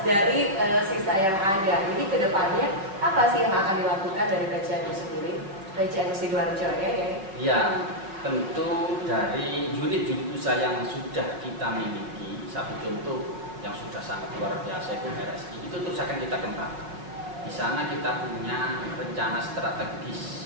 dari sisa yang ada, ini ke depannya apa sih yang akan dilakukan dari PCNU sendiri? PCNU Sidoarjo ya? Iya, tentu dari unit-unit usaha yang sudah kita miliki, satu contoh yang sudah sangat luar biasa itu RSI, itu terus akan kita kembangkan. Di sana kita punya rencana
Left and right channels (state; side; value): late; left; 5.1 ms